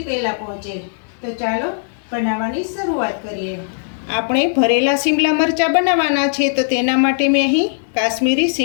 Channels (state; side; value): silent; right; 67 dB below the other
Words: પહેલાં પહોંચે. તો ચાલો બનાવવાની શરૂઆત કરીએ. આપણે ભરેલા શિમલા મરચાં બનાવવાના છે, તો તેના માટે મેં અહીં કાશ્મીરી